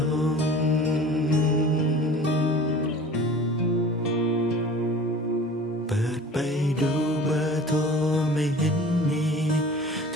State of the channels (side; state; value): both; normal; correlation 0.42